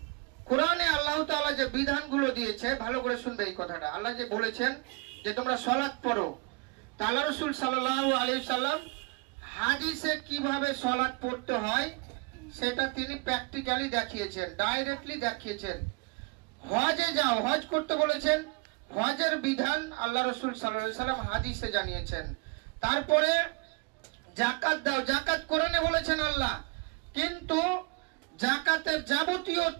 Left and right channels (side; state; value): left; quieter; 29.2 dB